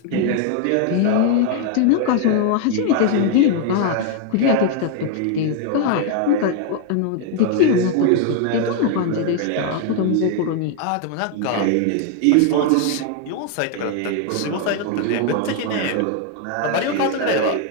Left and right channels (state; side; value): different; both; correlation 0.00